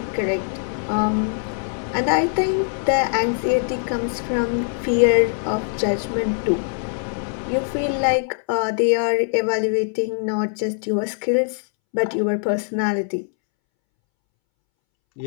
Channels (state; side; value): silent; right; 64 dB below the other